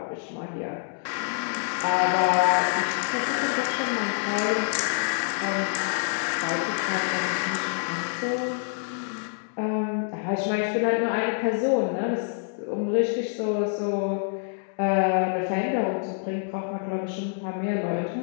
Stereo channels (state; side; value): silent; right; 61 dB below the other